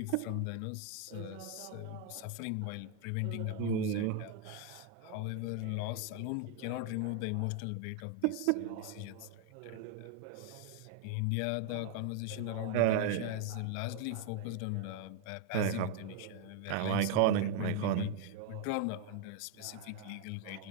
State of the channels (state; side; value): different; both; correlation 0.01